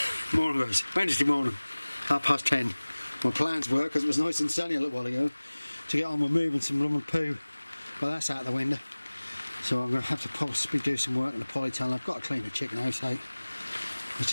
Morning guys, Wednesday morning, 10:30. My plans were, because it was nice and sunny a little while ago, to get on with moving some rum and poo. Well, that's out the window. So I'm going to have to possibly do some work in the polytunnel. I've got to clean the chicken house out. It's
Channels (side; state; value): both; inverted; correlation -1.00